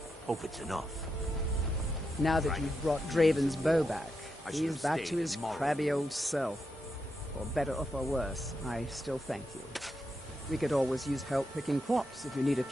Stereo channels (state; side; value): normal; both; correlation 0.85